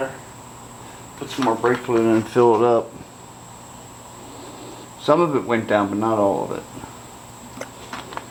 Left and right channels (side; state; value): both; identical; correlation 1.00